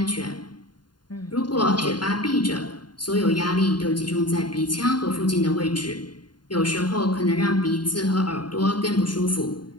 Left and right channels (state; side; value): late; right; 0.71 ms